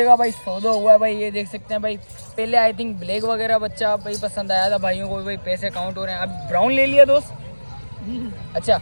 का भाई सौदा हुआ है भाई, ये देख सकते हैं भाई। पहले आई थिंक ब्लैक वगैरह बच्चा भाई पसंद आया था भाइयों को, भाई पैसे काउंट हो रहे हैं। अब ब्राउन ले लिया दोस्त, अच्छा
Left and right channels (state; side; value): inverted; both; correlation -1.00